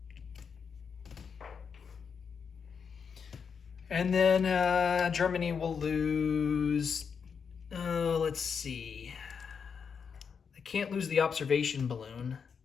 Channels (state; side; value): quieter; right; 6.4 dB